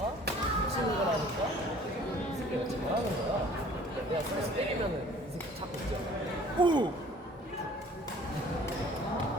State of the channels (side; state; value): both; normal; correlation 0.52